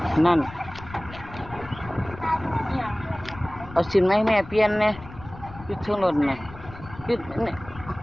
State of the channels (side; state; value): left; noise; rumble, 16 dB below the sound